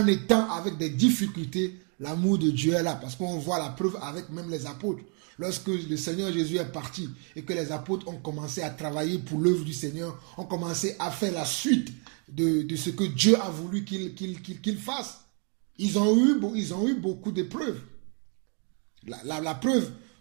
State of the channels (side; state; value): left; quieter; 39.4 dB